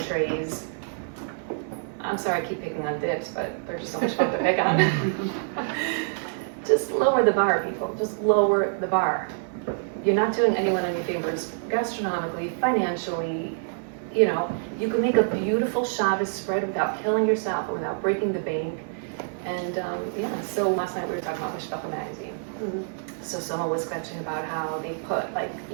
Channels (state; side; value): silent; left; 61 dB below the other